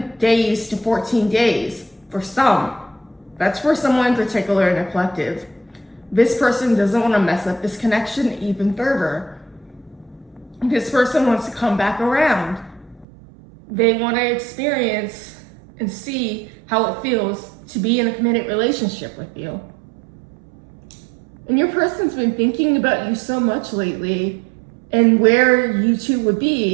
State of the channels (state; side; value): drops out; left; at 13.1 s